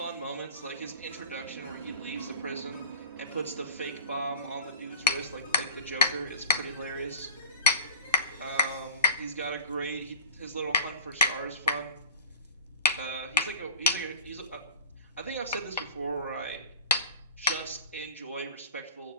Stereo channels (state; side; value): inverted; both; correlation -0.39